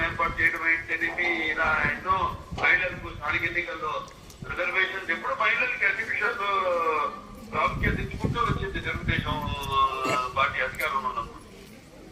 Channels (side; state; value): both; identical; correlation 1.00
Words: ఏర్పాటు చేయడం ఏంటనేది, ఇలా ఎన్నో మహిళలకు స్థానిక ఎన్నికల్లో రిజర్వేషన్స్ ఎప్పుడు మహిళలకి అన్ని విషయాల్లో ప్రాముఖ్యత ఇచ్చుకుంటూ వచ్చింది తెలుగుదేశం పార్టీ అధికారంలో ఉన్నప్పుడు.